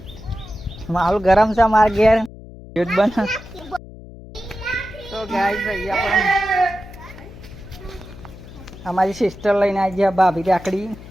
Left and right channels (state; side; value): noise; left; hum, 17 dB below the sound